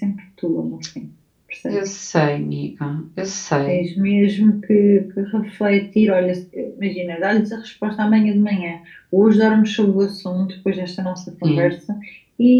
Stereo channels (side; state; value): both; identical; correlation 1.00